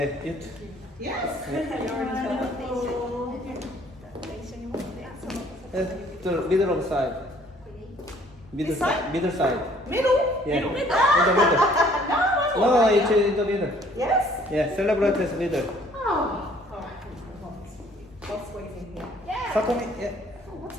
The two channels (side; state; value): both; normal; correlation 0.58